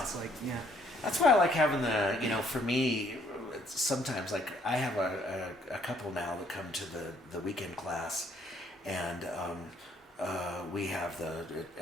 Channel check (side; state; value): both; normal; correlation 0.65